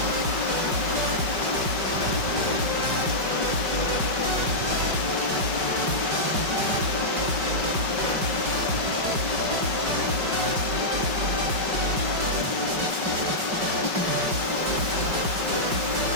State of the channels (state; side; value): late; left; 5.3 ms